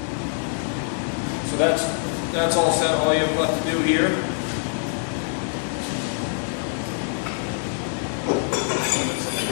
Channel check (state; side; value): silent; right; 59 dB below the other